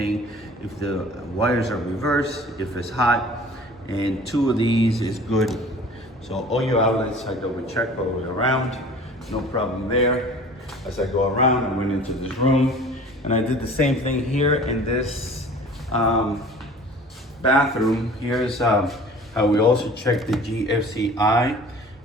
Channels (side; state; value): both; normal; correlation 0.45